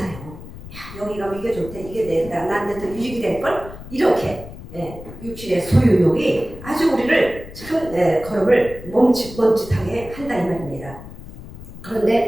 야, 여기 가면 이게 좋대. 이게 나한테 더 유익이 될걸? 이렇게 육신의 소유욕이 아주 우리를 참 걸음을 멈칫하게 한다 이 말입니다.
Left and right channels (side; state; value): left; noise; rumble, 14 dB below the sound